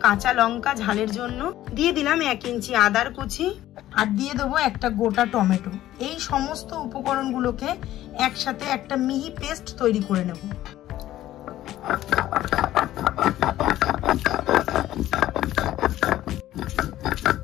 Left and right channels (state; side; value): quieter; right; 13.9 dB